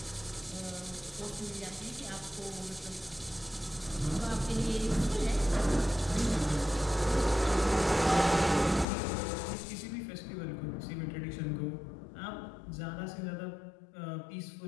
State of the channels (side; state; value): right; drops out; at 8.8 s